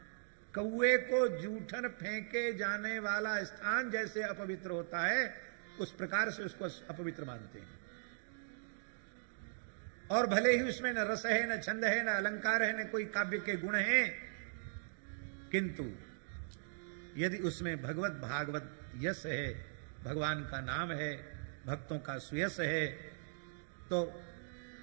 कौए को जूठन फेंके जाने वाला स्थान जैसे अपवित्र होता है उस प्रकार से उसको अपवित्र मानते हैं। और भले ही उसमें न रस है, न छंद है, न अलंकार है, न कोई काव्य के गुण हैं, किंतु यदि उसमें भगवत भागवत यश है, भगवान का नाम है, भक्तों का सुयश है, तो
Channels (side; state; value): left; silent; digital silence